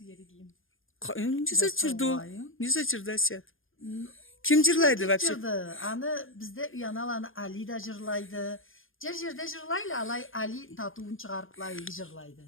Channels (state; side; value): late; right; 0.59 ms